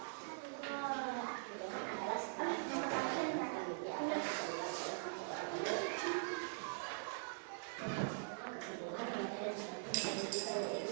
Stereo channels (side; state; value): left; silent; digital silence